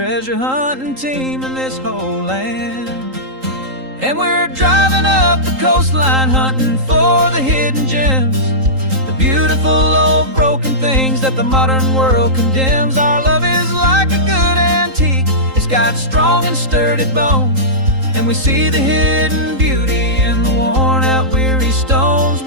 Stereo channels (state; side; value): late; left; 3.8 ms